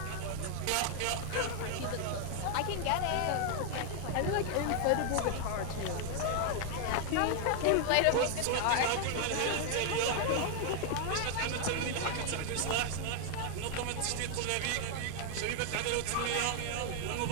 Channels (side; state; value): both; different; correlation 0.00